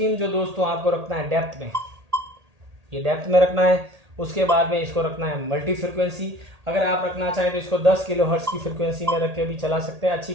जो दोस्तों आपको रखना है डेप्थ में, ये डेप्थ में रखना है। उसके बाद में इसको रखना है मल्टी फ्रिक्वेंसी। अगर आप रखना चाहें तो इसको 10 किलो हर्ट्ज की फ्रिक्वेंसी में रख के भी चला सकते हैं, अच्छी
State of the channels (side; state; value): left; late; 1.8 ms